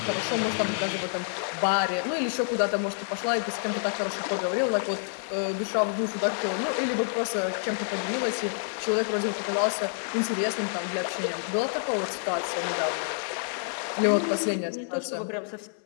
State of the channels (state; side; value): silent; right; 59 dB below the other